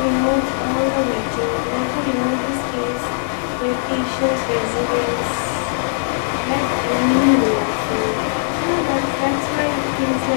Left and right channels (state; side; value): silent; right; 64 dB below the other